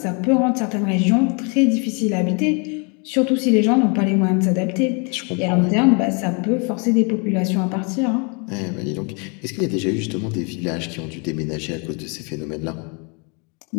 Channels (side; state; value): right; quieter; 34.4 dB